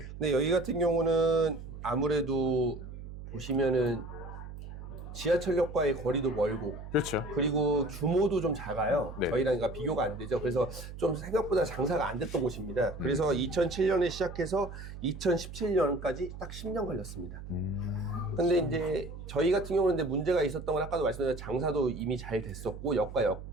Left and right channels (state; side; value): noise; right; hum, 11 dB below the sound